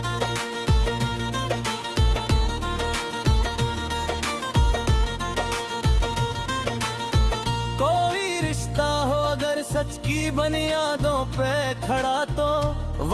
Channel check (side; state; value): both; identical; correlation 1.00